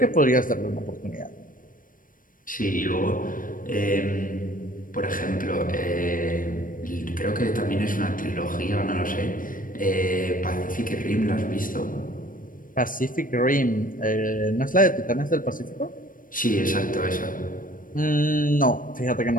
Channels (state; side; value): late; right; 0.40 ms